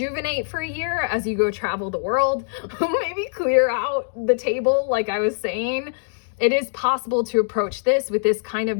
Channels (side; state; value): right; silent; digital silence